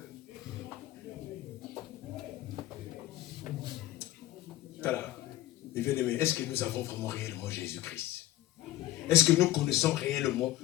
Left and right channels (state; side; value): quieter; right; 15.1 dB